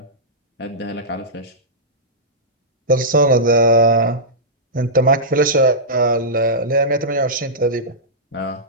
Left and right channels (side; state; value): both; normal; correlation -0.15